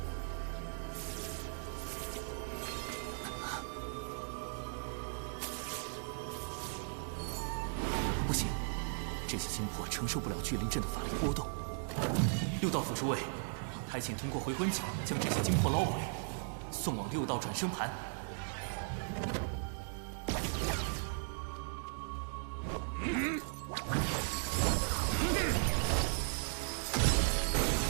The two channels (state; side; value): silent; left; digital silence